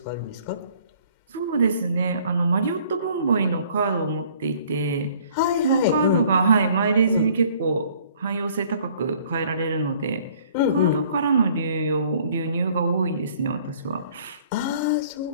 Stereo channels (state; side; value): inverted; both; correlation -0.57